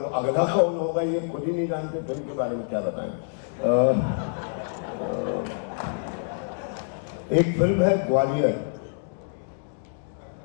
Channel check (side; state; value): right; silent; digital silence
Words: अगला कौन होगा ये खुद ही नहीं जानते, फिल्म के बारे में क्या बताएं। एक फिल्म है ग्वालियर,